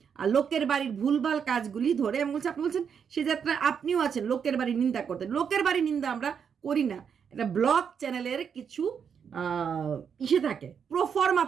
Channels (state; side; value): quieter; left; 7.2 dB